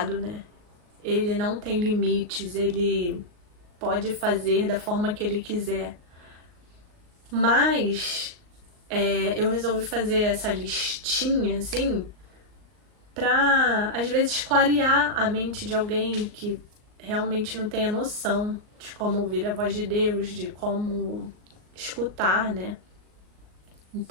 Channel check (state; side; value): late; left; 38 ms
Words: né? Ele não tem limites, ele pode fazer da forma que ele quiser. Mas eu resolvi fazer essa listinha, assim, pra, às vezes, clarear a mente de alguém que realmente não tenha noção de como ouvir a voz de Deus, de como escutar, né?